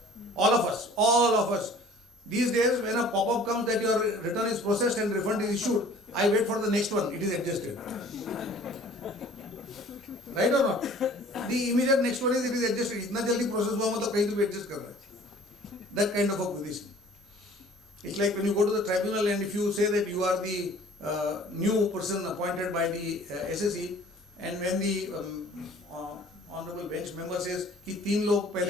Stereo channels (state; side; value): normal; both; correlation 0.50